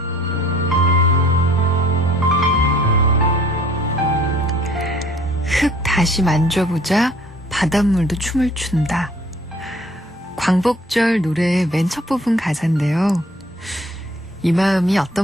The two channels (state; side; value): normal; both; correlation 0.55